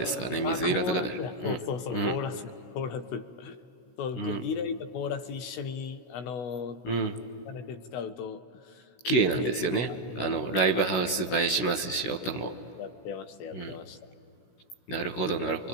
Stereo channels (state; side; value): late; right; 16 ms